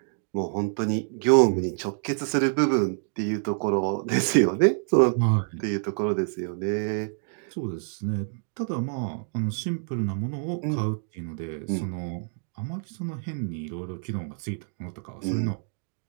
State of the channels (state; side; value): silent; left; digital silence